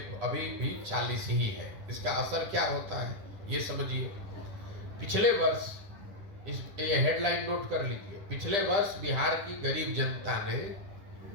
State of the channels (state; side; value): late; left; 10 ms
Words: अभी भी 40 ही है। इसका असर क्या होता है ये समझिए। पिछले वर्ष, ये हेडलाइन नोट कर लीजिए, पिछले वर्ष बिहार की गरीब जनता ने